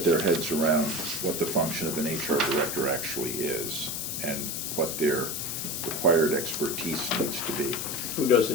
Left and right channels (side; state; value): left; noise; hiss, 3 dB below the sound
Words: their heads around what the function of an HR director actually is and what their required expertise needs to be. Who does